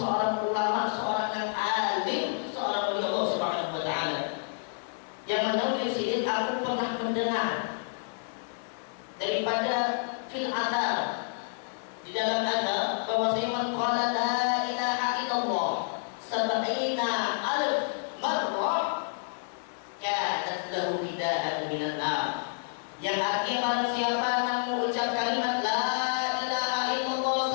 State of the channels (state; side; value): silent; right; digital silence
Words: ulama, seorang yang alim, seorang wali Allah Subhanahu wa taala. Yang menulis ini aku pernah mendengar daripada fil athar, di dalam athar bahwasanya man qala la ilaha illallah sab'ina alf marrah kanat lahu fidaan minan nar. Yang artinya barang siapa yang mengucap kalimat la ilaha illallah